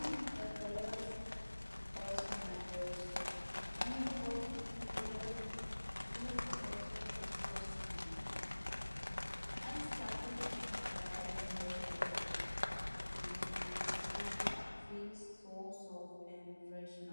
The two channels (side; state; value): both; inverted; correlation -1.00